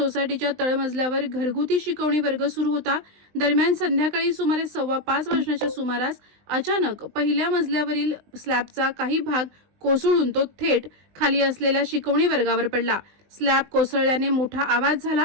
तळमजल्यावर घरगुती शिकवणी वर्ग सुरू होता। दरम्यान संध्याकाळी सुमारे 4:15 वाजण्याच्या सुमारास अचानक पहिल्या मजल्यावरील स्लॅबचा काही भाग कोसळून तो थेट खाली असलेल्या शिकवणी वर्गावर पडला। स्लॅब कोसळल्याने मोठा आवाज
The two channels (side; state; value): left; late; 20 ms